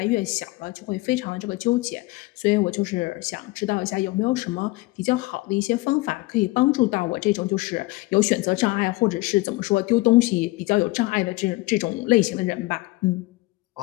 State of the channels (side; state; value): right; quieter; 21.2 dB